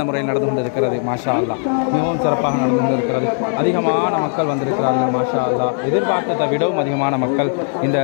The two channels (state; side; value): silent; right; 67 dB below the other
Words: முறையில் நடந்து கொண்டிருக்கிறது. மாஷா அல்லாஹ், மிகவும் சிறப்பாக நடந்து கொண்டிருக்கிறது. அதிகமான மக்கள் வந்திருக்கிறார்கள். மாஷா அல்லாஹ், எதிர்பார்த்ததை விடவும் அதிகமான மக்கள் இந்த